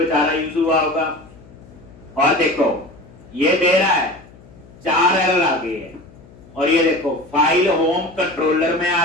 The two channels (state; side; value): noise; left; hum, 23 dB below the sound